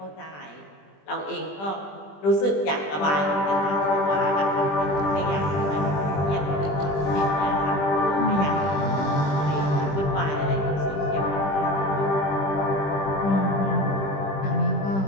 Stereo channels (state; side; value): late; right; 20 ms